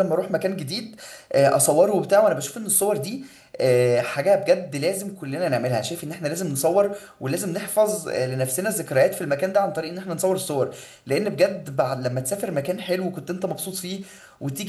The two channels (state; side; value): identical; both; correlation 1.00